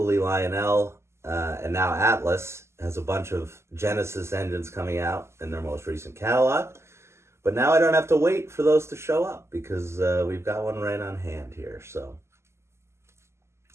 Lionel and now Atlas has a bunch of Genesis engines coming out in their most recent catalog. But now I don't have to wait for those to show up because we've got one right on hand here. So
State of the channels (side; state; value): left; late; 0.13 ms